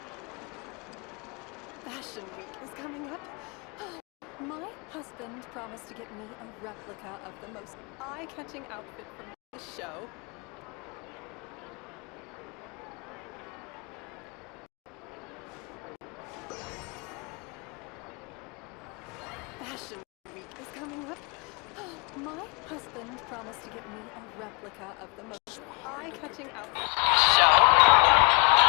Fashion Week is coming up. My husband promised to get me a replica of the most eye-catching outfit from the show. Fashion Week is coming up. My husband promised to get me a replica of the most eye-catching outfit from the show.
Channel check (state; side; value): quieter; right; 35.0 dB